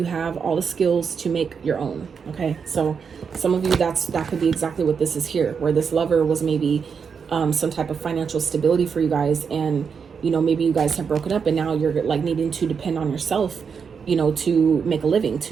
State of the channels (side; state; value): left; quieter; 6.2 dB